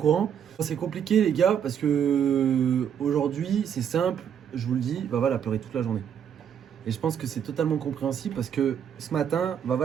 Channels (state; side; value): quieter; left; 8.5 dB